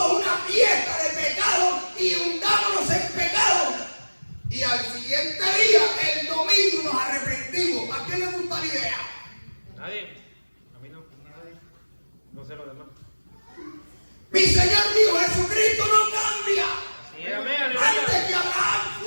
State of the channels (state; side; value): inverted; both; correlation -1.00